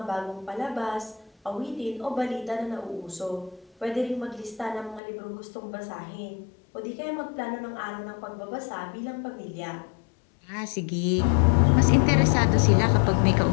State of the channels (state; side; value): drops out; right; at 5.0 s